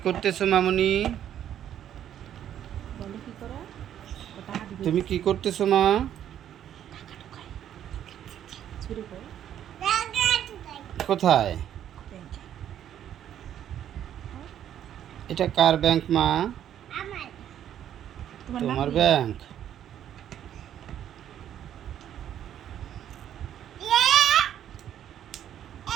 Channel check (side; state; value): left; quieter; 10.4 dB